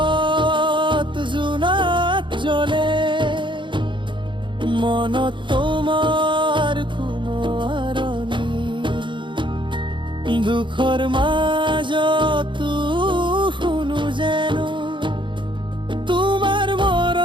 জোনাক জ্বলে, মনত তোমাৰ কোনো আৰণি, দুখৰ মাজতো শুনো যেনো তোমাৰ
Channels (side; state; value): left; late; 0.23 ms